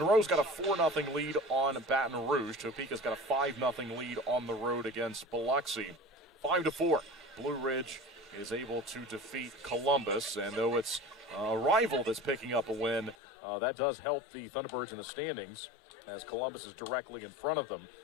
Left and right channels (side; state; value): right; drops out; at 13.2 s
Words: got a 4-0 lead on Baton Rouge. Topeka's got a 5-0 lead on the road against Biloxi. 5-4. Blue Ridge is able to defeat Columbus, and though it's a rival that's picking up a win, that does help the Thunderbirds in the standings, as Columbus is directly in front of them,